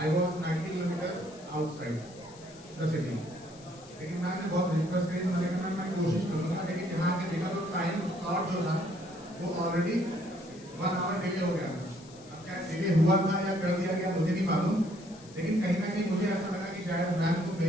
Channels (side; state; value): left; noise; hiss, 22 dB below the sound